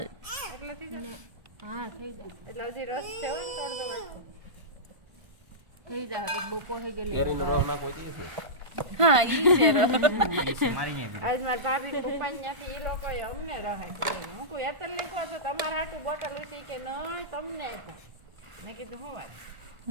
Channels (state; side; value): late; left; 1.5 ms